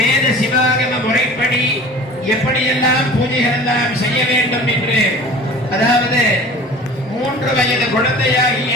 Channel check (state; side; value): normal; both; correlation 0.42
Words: சிவாகம முறைப்படி எப்படியெல்லாம் பூஜைகள் எல்லாம் செய்ய வேண்டும் என்று, அதாவது 3 வயது குழந்தையாகிய